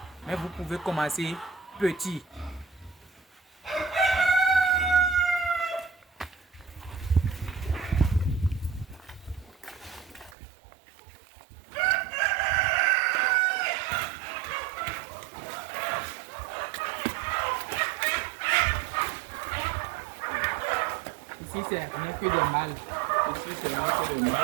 Mais vous pouvez commencer petit. Ici, c'est rien que des mâles. Ici, c'est rien que des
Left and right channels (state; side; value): drops out; left; at 10.4 s